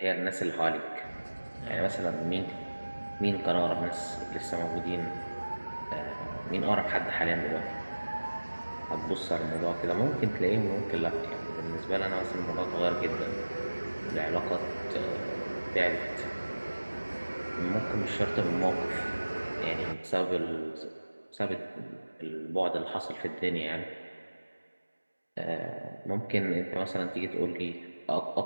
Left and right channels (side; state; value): both; inverted; correlation -1.00